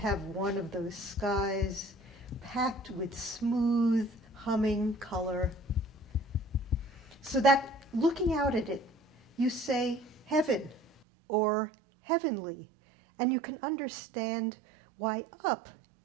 one of those skies packed with smooth, humming color. So that looking out at it, you say heaven or heavenly, and you can understand why up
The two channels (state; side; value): drops out; left; at 11.0 s